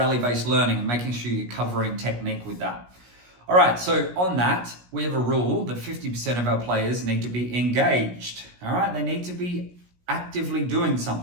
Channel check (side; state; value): left; late; 17 ms